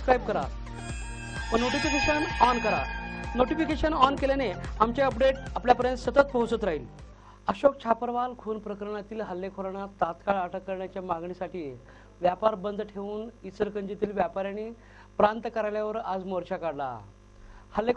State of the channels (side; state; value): both; identical; correlation 1.00